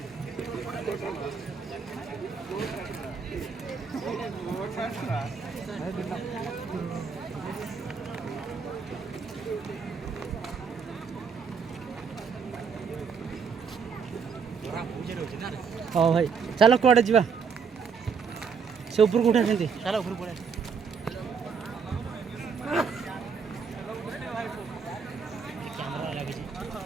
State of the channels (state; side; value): quieter; left; 5.9 dB